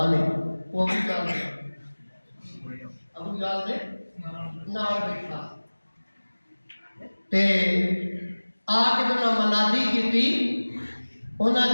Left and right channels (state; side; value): inverted; both; correlation -1.00